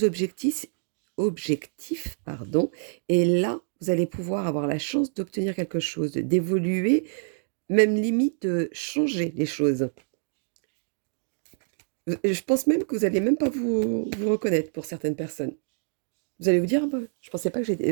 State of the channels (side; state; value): left; silent; digital silence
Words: objectifs, pardon, et là, vous allez pouvoir avoir la chance d'obtenir quelque chose, d'évoluer, même limite de changer les choses. Je pense même que vous allez même pas vous reconnaître pour certaines personnes. Vous allez vous dire: «Ah bah, je pensais pas que